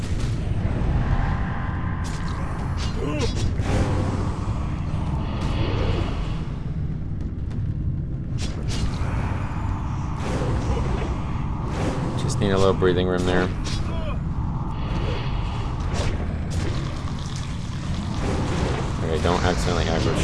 Just need a little breathing room there. Okay, don't accidentally aggro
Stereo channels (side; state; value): both; identical; correlation 1.00